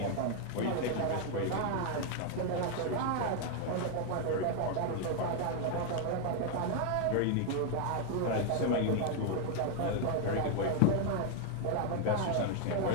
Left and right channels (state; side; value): different; both; correlation 0.00